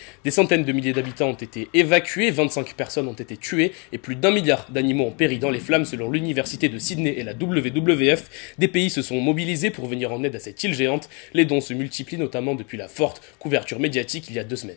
Des centaines de milliers d'habitants ont été évacués, 25 personnes ont été tuées et plus d'1 milliard d'animaux ont péri dans les flammes selon l'université de Sydney et la WWF. Des pays se sont mobilisés pour venir en aide à cette île géante. Les dons se multiplient notamment depuis la forte couverture médiatique il y a 2 semaines.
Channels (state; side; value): quieter; right; 33.7 dB